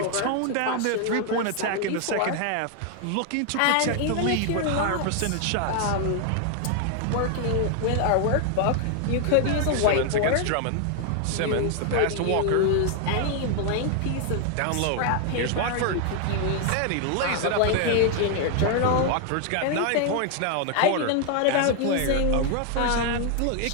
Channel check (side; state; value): both; different; correlation 0.00